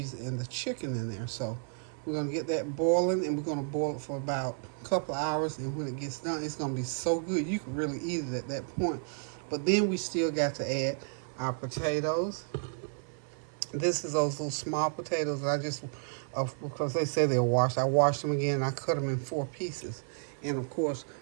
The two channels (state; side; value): silent; left; 56 dB below the other